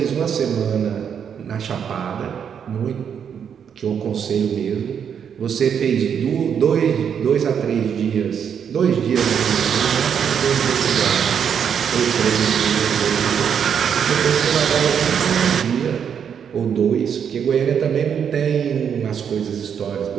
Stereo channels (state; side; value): quieter; left; 7.8 dB